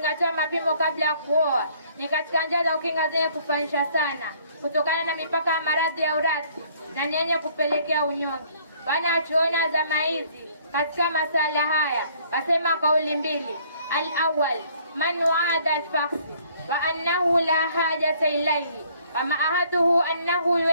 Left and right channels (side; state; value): both; inverted; correlation -0.60